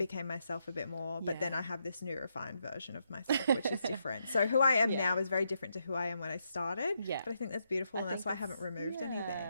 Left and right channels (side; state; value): both; inverted; correlation -0.79